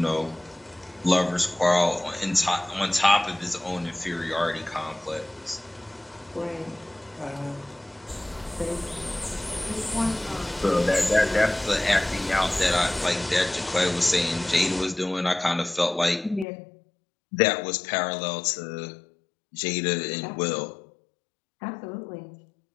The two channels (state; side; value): drops out; right; at 16.4 s